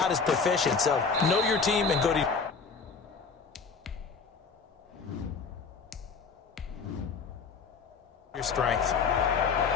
as proficient. So know your team and go to your strength.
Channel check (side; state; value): right; quieter; 5.2 dB